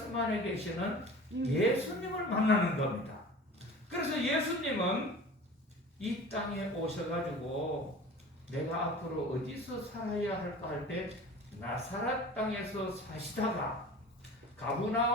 안에 계시는 예수님을 만나는 겁니다. 그래서 예수님은 이 땅에 오셔가지고 내가 앞으로 어디서 살아야 할까 할 때 나사렛 땅에서 사시다가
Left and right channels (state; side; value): normal; both; correlation 0.39